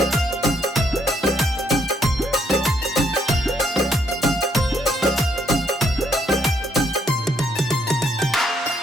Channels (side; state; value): both; normal; correlation 0.71